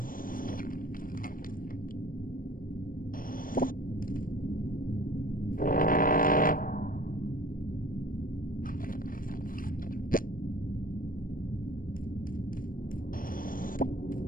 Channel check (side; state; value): right; late; 0.41 ms